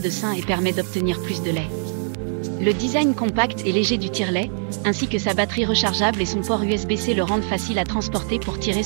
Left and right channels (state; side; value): silent; left; digital silence